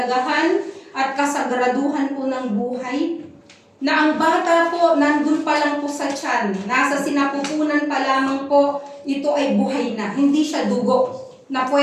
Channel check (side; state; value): both; identical; correlation 1.00